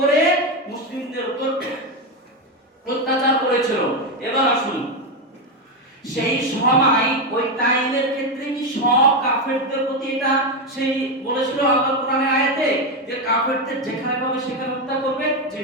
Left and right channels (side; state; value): both; normal; correlation 0.09